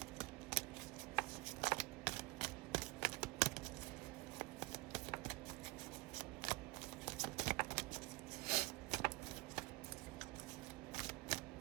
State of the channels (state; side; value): quieter; left; 24.0 dB